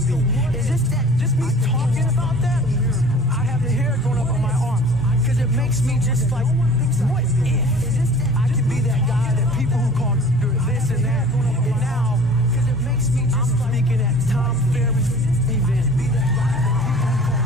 be? Is this that just me talking about that? I have the hair going up on my arms because it makes me just like, what if I can be that guy that people who call this and that, and now I'm speaking at Tom Ferry's event.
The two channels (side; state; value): both; normal; correlation 0.46